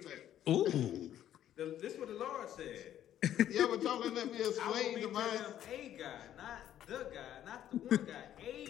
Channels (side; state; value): right; quieter; 11.4 dB